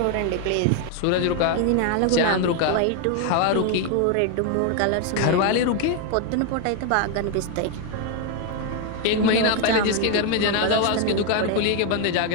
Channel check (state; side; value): different; both; correlation 0.01